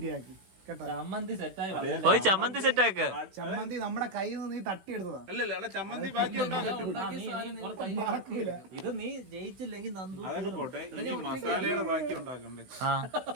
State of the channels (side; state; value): left; late; 16 ms